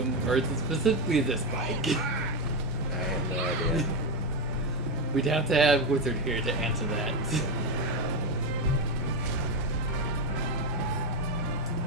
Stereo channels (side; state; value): both; normal; correlation 0.11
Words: Or is it specifically this bike? I have no idea. We'd have to have Wizard here to answer that.